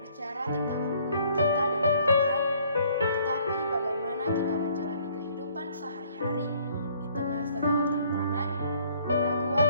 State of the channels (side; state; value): both; inverted; correlation -0.61